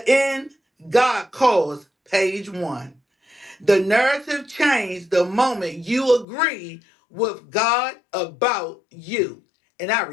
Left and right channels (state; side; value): drops out; right; at 6.2 s